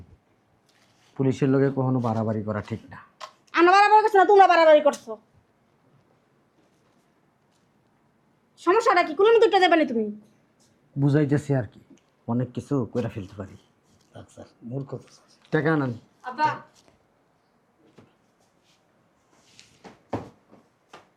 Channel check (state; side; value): identical; both; correlation 1.00